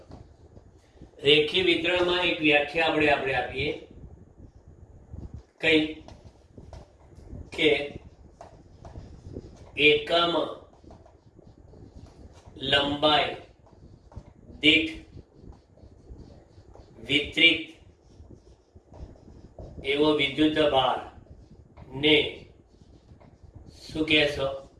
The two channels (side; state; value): both; identical; correlation 1.00